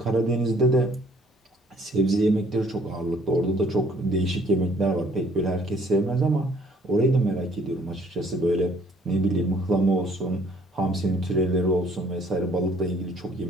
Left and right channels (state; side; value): normal; both; correlation 0.60